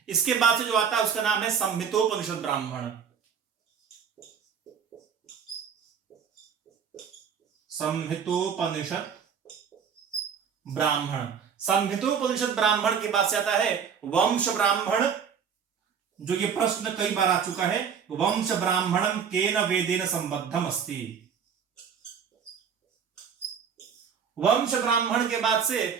इसके बाद से जो आता है उसका नाम है संहितोपनिषद ब्राह्मण। संहितोपनिषद ब्राह्मण। संहितोपनिषद ब्राह्मण के बाद से आता है वंश ब्राह्मण, जो ये प्रश्न कई बार आ चुका है, वंश ब्राह्मणम केन वेदेन संबद्धम अस्ति। वंश ब्राह्मण के बाद से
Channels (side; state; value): left; quieter; 7.1 dB